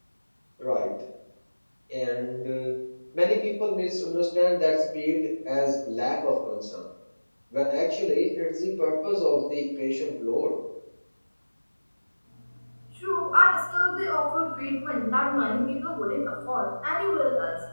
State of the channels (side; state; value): both; inverted; correlation -1.00